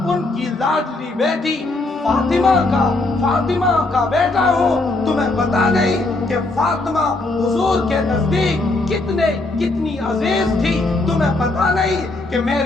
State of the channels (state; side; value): quieter; right; 3.0 dB